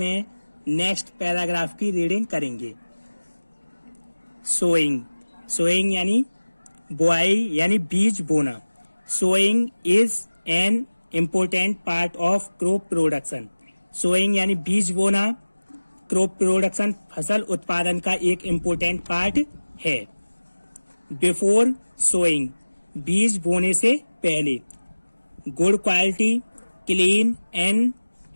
नेक्स्ट पैराग्राफ की रीडिंग करेंगे। सोइंग सोइंग यानी बुआई यानी बीज बोना। Sowing is an important part of crop production. Sowing यानी बीज बोना क्रॉप प्रोडक्शन फसल उत्पादन का एक इम्पोर्टेंट पार्ट है। बिफोर सोइंग बीज बोने से पहले good quality clean and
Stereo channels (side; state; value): both; inverted; correlation -1.00